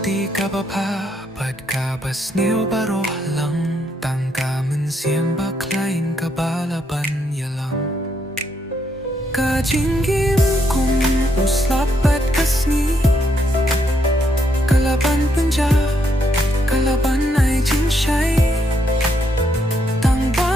kapapapad kabas niyo baroh lang tangka mensiam baklain kabalaban yalang ka jingim kung uslapat kasngi kalaban penja kalaban ay jingshay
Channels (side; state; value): both; normal; correlation 0.76